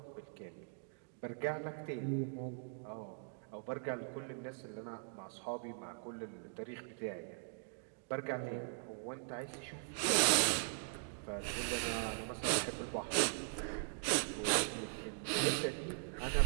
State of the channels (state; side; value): silent; left; digital silence